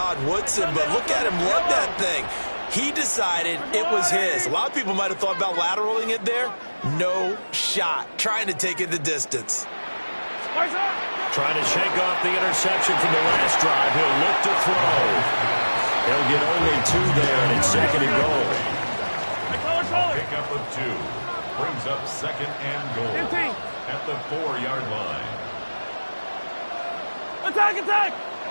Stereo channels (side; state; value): both; inverted; correlation -1.00